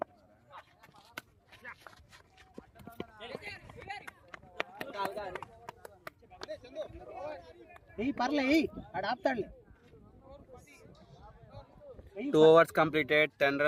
పర్లే ఆడు ఆపుతాడులే. 2 overs completed, 10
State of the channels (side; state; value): both; identical; correlation 1.00